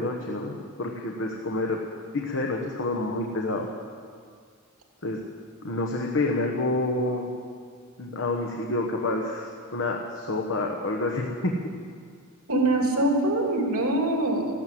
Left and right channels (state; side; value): normal; both; correlation 0.14